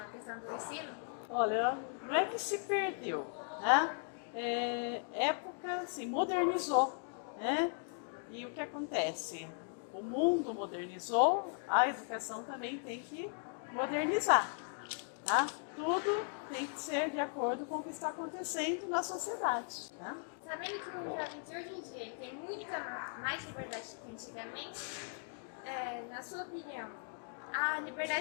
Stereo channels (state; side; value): silent; right; 53 dB below the other